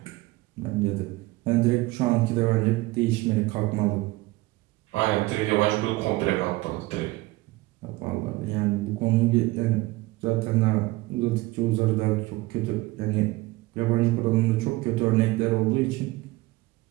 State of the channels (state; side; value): quieter; left; 20.4 dB